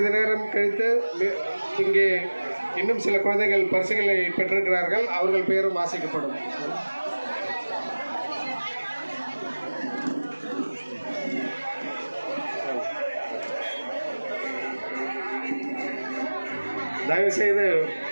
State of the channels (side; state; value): both; inverted; correlation -1.00